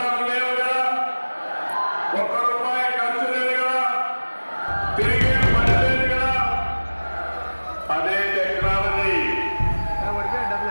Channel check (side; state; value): both; inverted; correlation -1.00